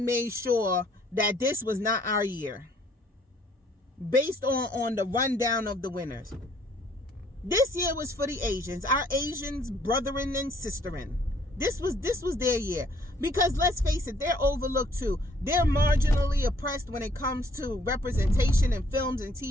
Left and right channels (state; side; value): normal; both; correlation 0.62